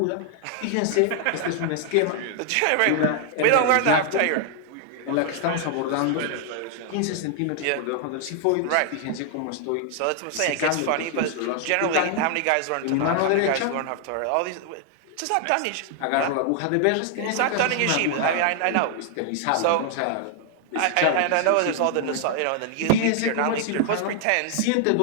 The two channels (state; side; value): different; both; correlation 0.00